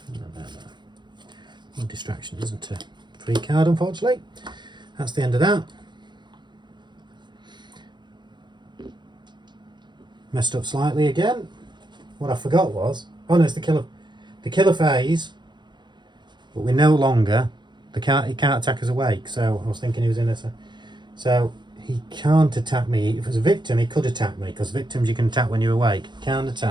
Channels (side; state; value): left; late; 0.22 ms